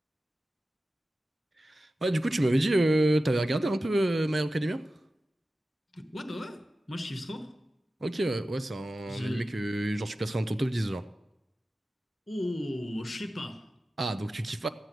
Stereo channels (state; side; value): normal; both; correlation 0.95